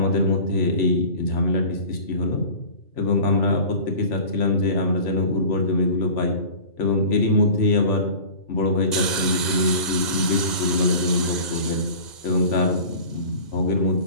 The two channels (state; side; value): late; right; 1.9 ms